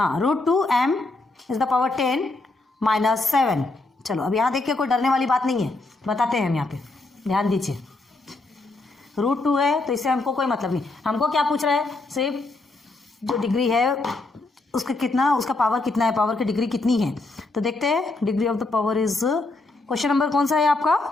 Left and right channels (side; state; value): right; quieter; 3.2 dB